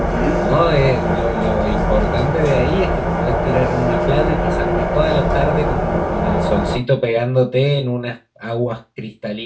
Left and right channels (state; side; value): identical; both; correlation 1.00